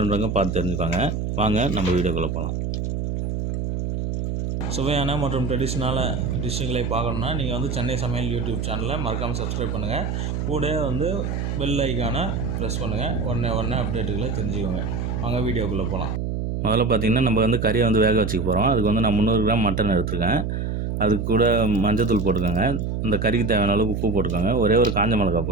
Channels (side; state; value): right; noise; hum, 2 dB below the sound